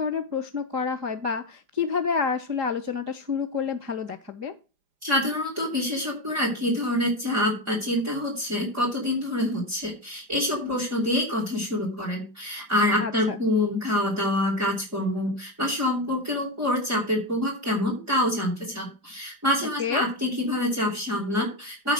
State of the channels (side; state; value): left; late; 4.9 ms